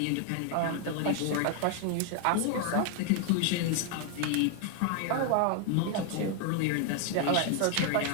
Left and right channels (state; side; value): different; both; correlation 0.00